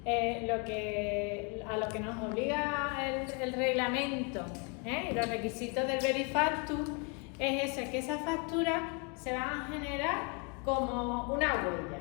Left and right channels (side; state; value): right; quieter; 34.6 dB